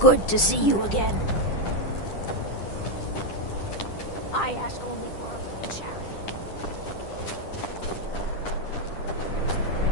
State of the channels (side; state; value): right; late; 10 ms